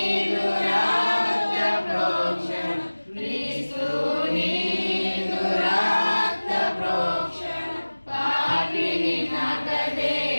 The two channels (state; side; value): inverted; both; correlation -1.00